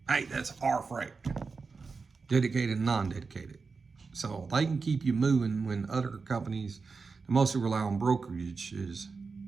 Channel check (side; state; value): left; quieter; 4.6 dB